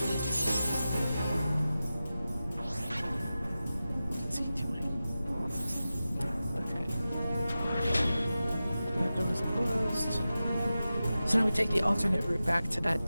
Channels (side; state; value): both; inverted; correlation -0.94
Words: What's he doing? Okay. That door is closed. So now we take the alternate route back to